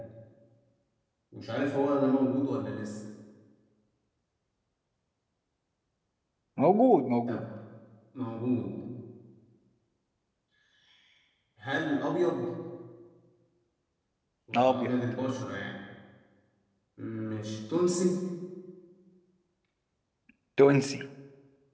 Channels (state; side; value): identical; both; correlation 1.00